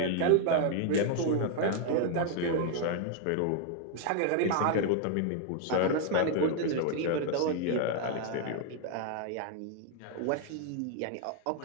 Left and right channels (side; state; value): both; different; correlation 0.00